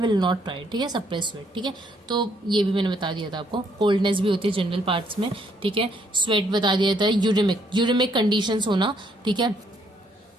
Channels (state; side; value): normal; both; correlation 0.69